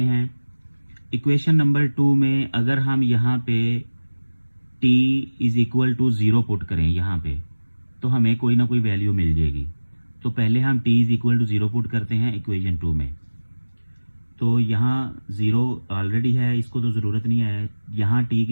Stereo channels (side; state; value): both; inverted; correlation -1.00